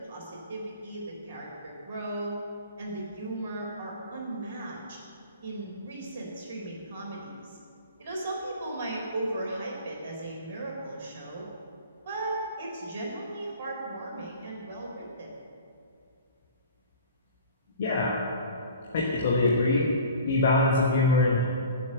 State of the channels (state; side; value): inverted; both; correlation -0.41